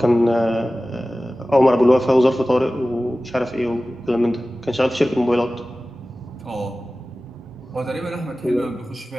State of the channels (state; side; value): normal; both; correlation 0.96